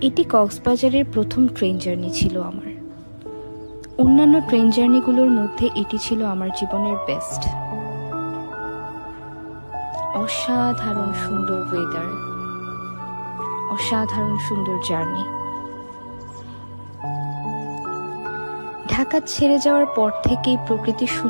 এটি কক্সবাজারের প্রথম ট্রেন জার্নি ছিল আমার। অন্যান্য ট্রেন জার্নিগুলোর মধ্যে এটি ছিল আমার জীবনের বেস্ট। অসাধারণ সুন্দর ওয়েদার, অসাধারণ সুন্দর জার্নি। ঢাকা ছেড়ে যাওয়ার পর থেকেই প্রকৃতির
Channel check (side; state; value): both; inverted; correlation -1.00